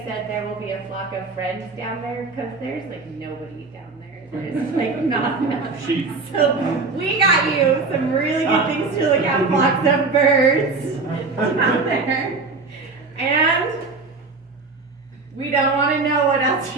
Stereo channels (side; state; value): left; quieter; 4.0 dB